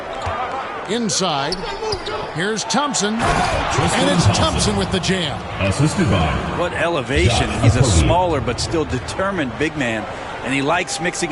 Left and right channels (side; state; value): both; identical; correlation 1.00